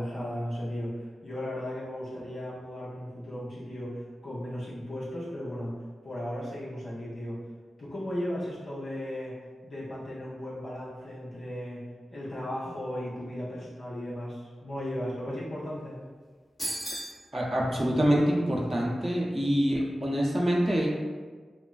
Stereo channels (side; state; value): both; normal; correlation 0.95